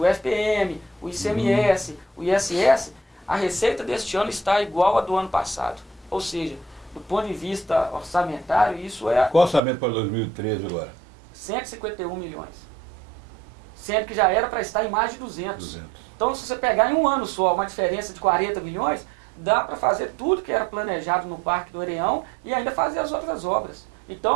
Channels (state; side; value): drops out; left; at 9.6 s